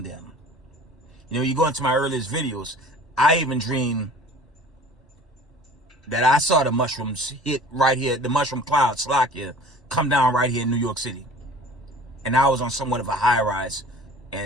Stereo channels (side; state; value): both; normal; correlation 0.45